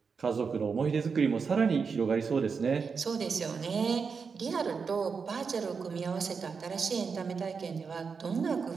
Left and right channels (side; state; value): left; quieter; 5.5 dB